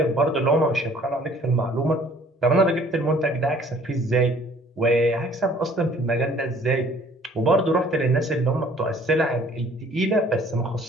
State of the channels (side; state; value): both; normal; correlation 0.55